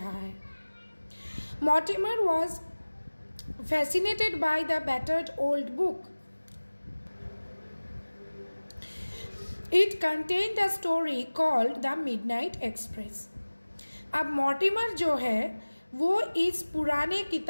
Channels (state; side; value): inverted; both; correlation -1.00